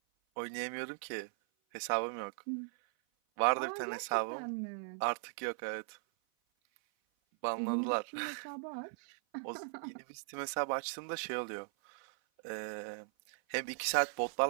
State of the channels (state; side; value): silent; left; 52 dB below the other